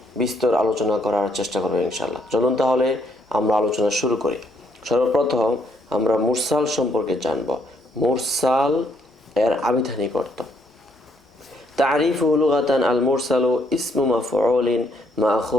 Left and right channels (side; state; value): both; normal; correlation 0.71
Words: বিস্তর আলোচনা করার চেষ্টা করব ইনশাআল্লাহ। চলুন তাহলে আমরা আলোচনা শুরু করি। সর্বপ্রথম আমরা মুরসাল সম্পর্কে জানব। মুরসাল এর আবিধানিক অর্থ। তারিফুহু লুগাতান আল মুরসালু ইসমু মাফউলিন